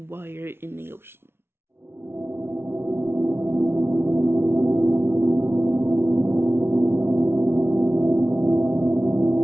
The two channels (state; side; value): late; left; 0.12 ms